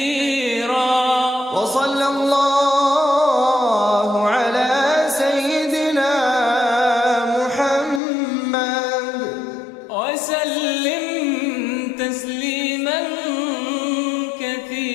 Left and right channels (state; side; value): drops out; right; at 8.0 s